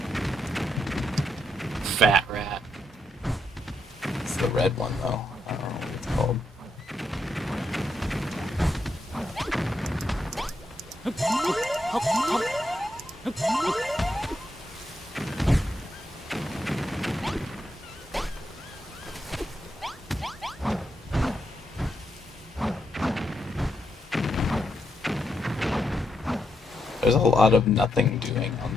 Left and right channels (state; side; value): normal; both; correlation 0.81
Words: Fat rat. It's the red one though. I don't know what it's called. There's a lot of nothing doing on